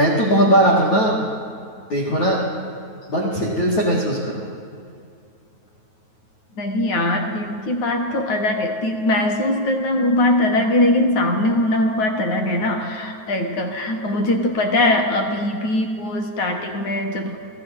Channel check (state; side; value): late; right; 9.3 ms